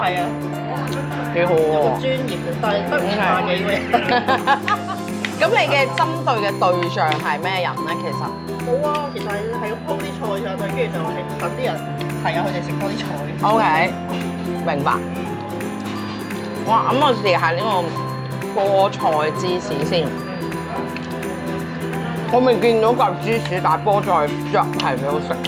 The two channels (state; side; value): identical; both; correlation 1.00